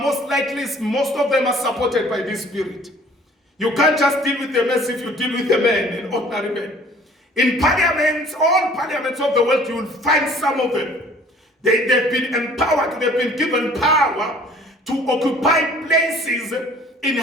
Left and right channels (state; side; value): normal; both; correlation 0.53